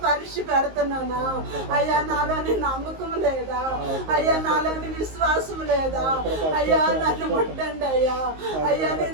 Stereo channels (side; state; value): left; late; 19 ms